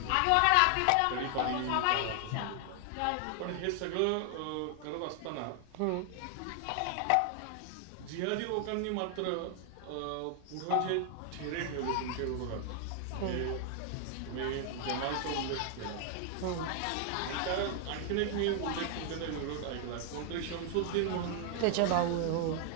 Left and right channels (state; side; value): different; both; correlation 0.00